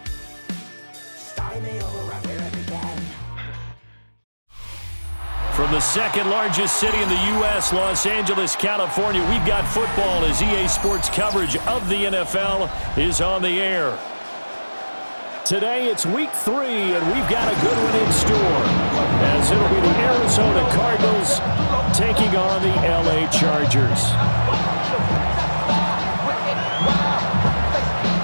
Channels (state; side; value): inverted; both; correlation -1.00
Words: Starting me over right where it began. From the second largest city in the U.S., Los Angeles, California, we've got football as EA Sports coverage of the NFL is on the air. Today it's week 3, and we've got a good one in store, as it'll be the Arizona Cardinals taking on the L.A. Chargers.